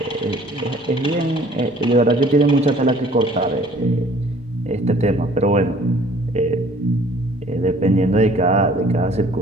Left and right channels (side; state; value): both; normal; correlation 0.54